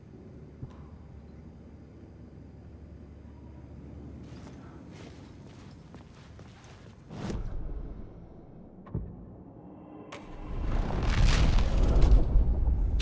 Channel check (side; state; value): both; identical; correlation 1.00